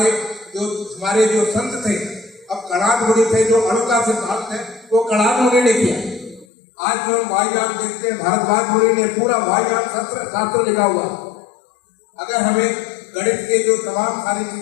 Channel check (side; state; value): right; drops out; at 6.5 s